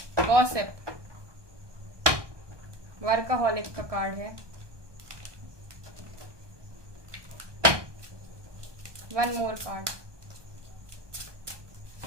गॉसिप, वर्कaholic का कार्ड है। One more card,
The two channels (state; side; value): late; left; 1.2 ms